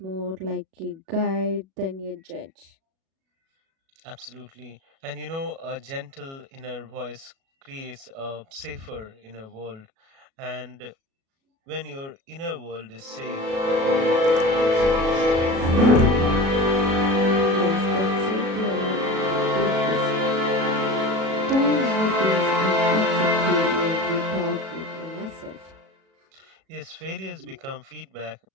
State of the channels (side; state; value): left; late; 37 ms